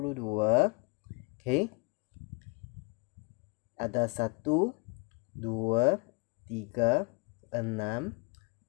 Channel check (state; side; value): quieter; right; 30.9 dB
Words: Okey, ada 1, 2, 3, 6,